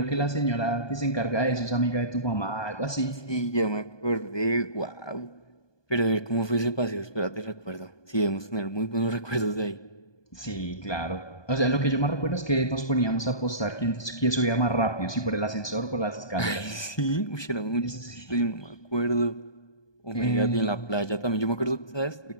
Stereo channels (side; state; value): right; late; 1.2 ms